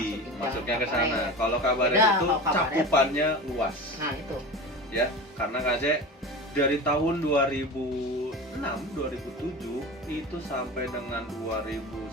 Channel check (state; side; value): normal; both; correlation 0.30